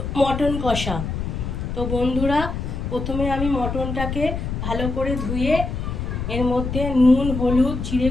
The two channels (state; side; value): noise; left; rumble, 4 dB below the sound